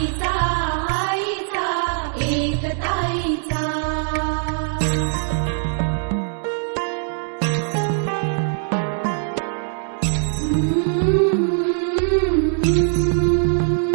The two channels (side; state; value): left; silent; digital silence